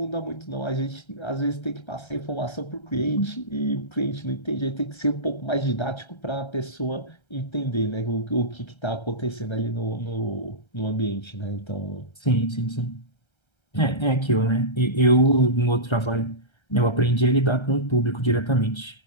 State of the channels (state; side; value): late; right; 1.3 ms